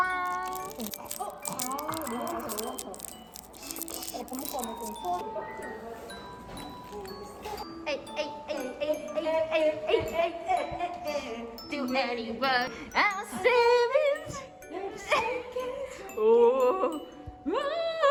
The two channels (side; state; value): both; identical; correlation 1.00